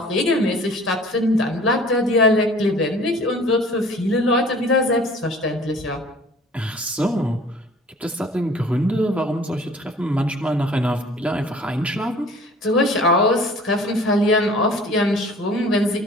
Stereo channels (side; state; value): both; normal; correlation 0.49